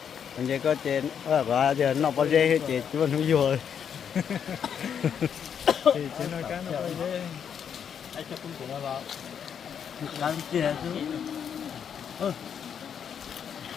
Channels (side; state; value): right; quieter; 7.9 dB